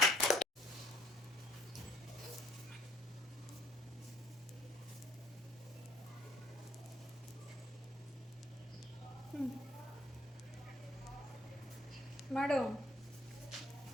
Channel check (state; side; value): normal; both; correlation 0.61